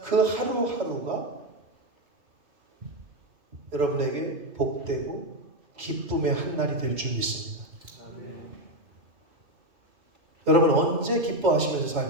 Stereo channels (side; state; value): left; late; 3.1 ms